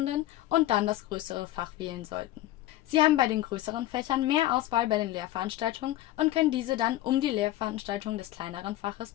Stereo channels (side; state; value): right; quieter; 15.2 dB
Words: und dann das größere Fach wählen sollten. Sie haben bei den größeren Fächern mehr Auswahl bei den Lehrveranstaltungen und können diese dann um die Lehrveranstaltungen des kleineren Faches